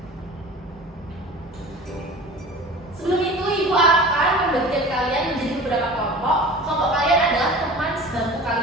Sebelum itu, Ibu akan membagikan kalian menjadi beberapa kelompok. Kelompok kalian adalah teman sebangku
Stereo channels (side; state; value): both; normal; correlation 0.39